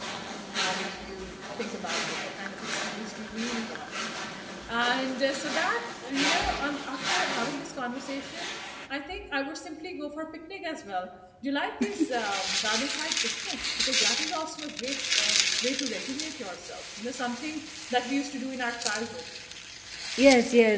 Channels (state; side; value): identical; both; correlation 1.00